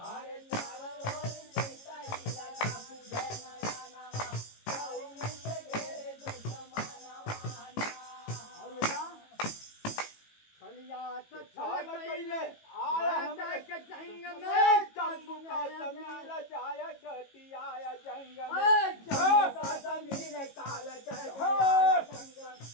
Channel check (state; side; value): late; right; 18 ms